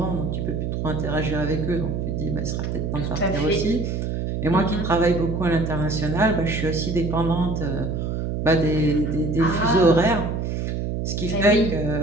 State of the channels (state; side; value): noise; right; hum, 2 dB below the sound